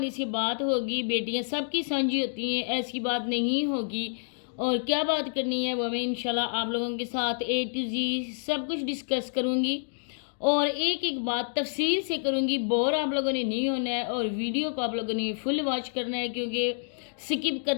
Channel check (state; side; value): silent; right; digital silence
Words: से बात होगी बेटियाँ सबकी साझी होती हैं, ऐसी बात नहीं होगी। और क्या बात करनी है वो मैं इंशाल्लाह आप लोगों के साथ A to Z सब कुछ डिस्कस करूँगी और एक एक बात तफसील से करूँगी। बोर आप लोगों ने नहीं होना है और वीडियो को आप लोगों ने फुल वॉच करना है, क्योंकि स्किप